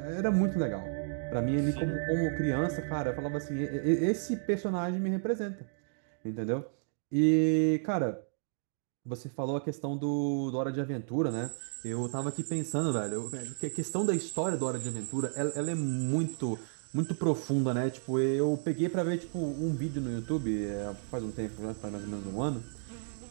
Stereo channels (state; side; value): silent; left; digital silence